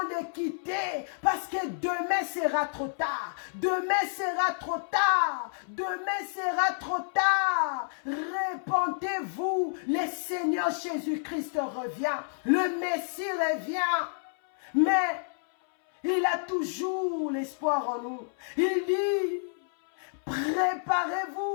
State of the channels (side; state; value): right; silent; 58 dB below the other